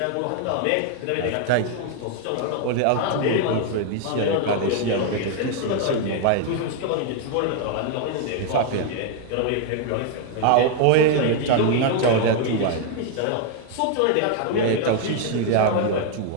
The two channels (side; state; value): both; different; correlation 0.00